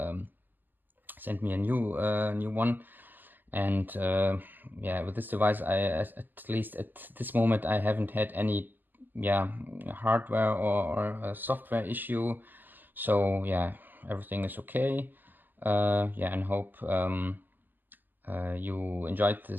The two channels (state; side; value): late; left; 0.088 ms